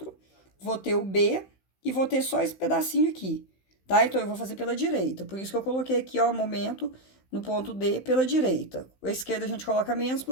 vou ter o B e vou ter só esse pedacinho aqui, tá? Então, eu vou fazer pela direita. Por isso que eu coloquei aqui, ó, o momento no ponto D pela direita. A esquerda a gente coloca menos,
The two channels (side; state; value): right; late; 16 ms